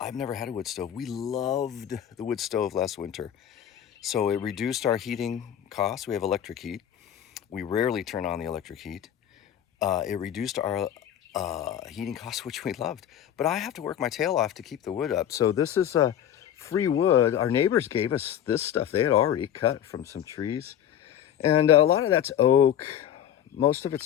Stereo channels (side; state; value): right; quieter; 10.2 dB